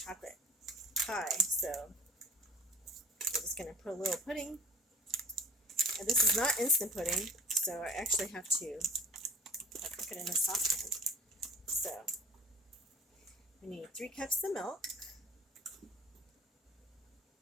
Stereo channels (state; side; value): normal; both; correlation 0.44